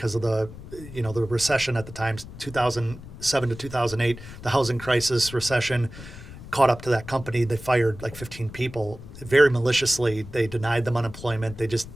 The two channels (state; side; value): noise; left; rumble, 14 dB below the sound